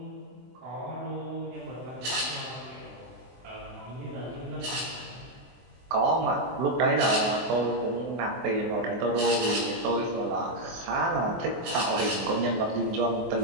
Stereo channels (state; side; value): late; left; 23 ms